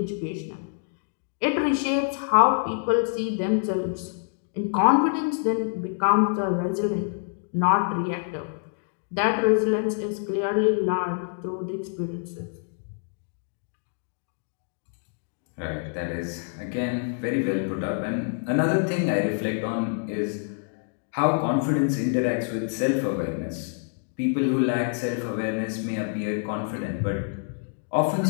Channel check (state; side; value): silent; right; 61 dB below the other